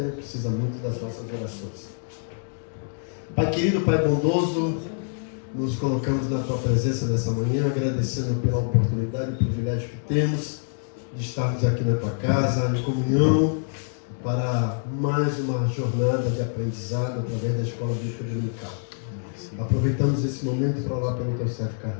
Precisa muito das nossas orações. Pai querido, Pai bondoso, nos colocamos na Tua presença nessa manhã, agradecendo pela oportunidade e privilégio que temos de estarmos aqui na Tua casa, em comunhão, para mais uma jornada de aprendizado através da Escola Bíblica Dominical. Aproveitamos esse momento para orar pelo Teu servo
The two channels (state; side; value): silent; right; digital silence